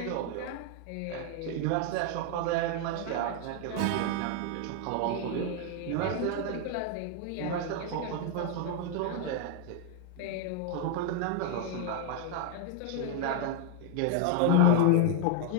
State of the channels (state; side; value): different; both; correlation 0.01